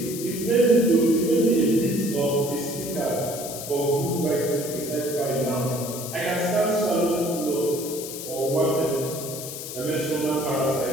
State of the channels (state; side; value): noise; left; hiss, 9 dB below the sound